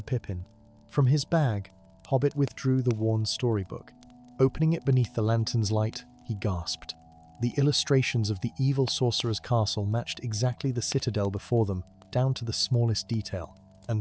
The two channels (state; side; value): identical; both; correlation 1.00